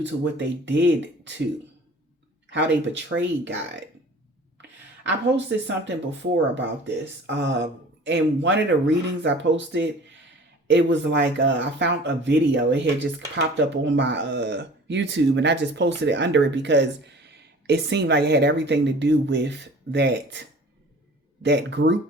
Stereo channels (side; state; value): both; normal; correlation 0.45